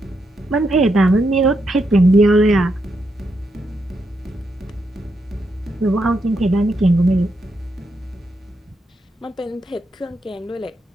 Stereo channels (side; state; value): both; normal; correlation 0.81